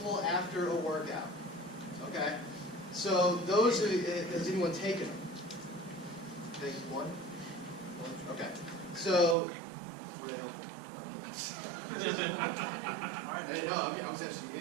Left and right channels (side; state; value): left; drops out; at 9.3 s